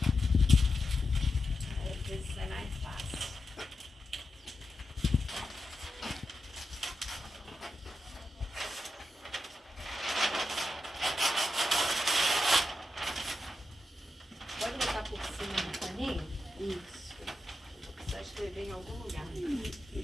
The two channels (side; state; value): both; normal; correlation 0.88